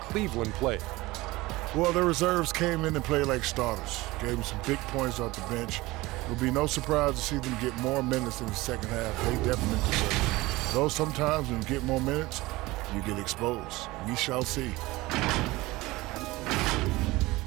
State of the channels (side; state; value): left; quieter; 20.2 dB